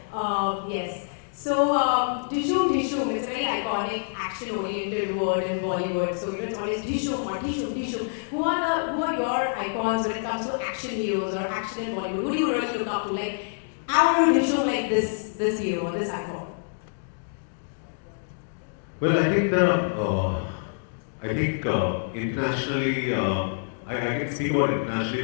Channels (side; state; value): right; silent; digital silence